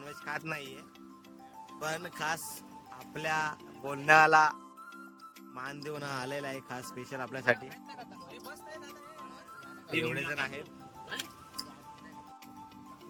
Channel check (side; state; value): both; identical; correlation 1.00